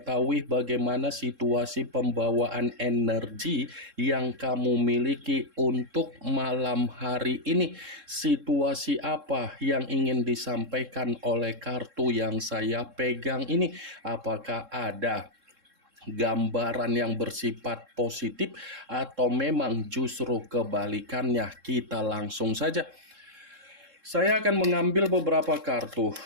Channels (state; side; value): late; left; 3.7 ms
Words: bagaimana situasi pembawaan energi yang kamu miliki untuk malam hari ini. Situasi apa yang ingin disampaikan oleh kartu yang saya pegang ini? Apakah ada gambaran yang bersifat positif atau memang justru kebalikannya? Kita langsung saja. Saya akan mengambil beberapa kartu,